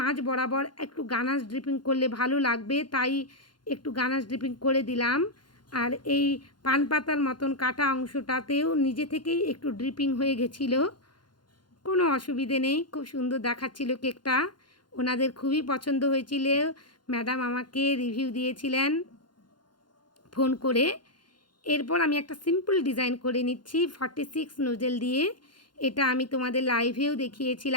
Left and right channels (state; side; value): late; right; 0.71 ms